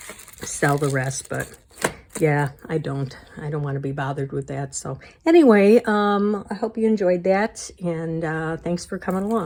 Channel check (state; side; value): identical; both; correlation 1.00